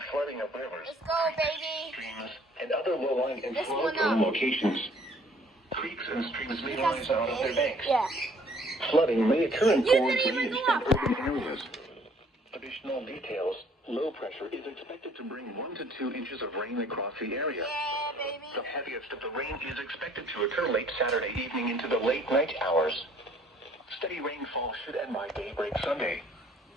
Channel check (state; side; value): normal; both; correlation 0.59